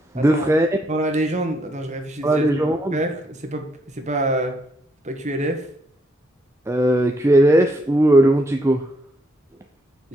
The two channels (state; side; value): normal; both; correlation 0.75